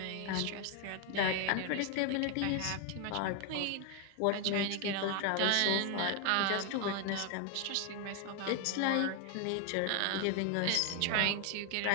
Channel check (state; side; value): different; both; correlation 0.01